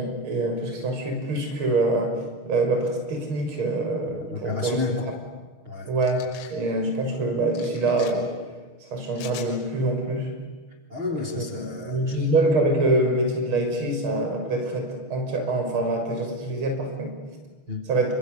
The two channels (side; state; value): left; late; 6.5 ms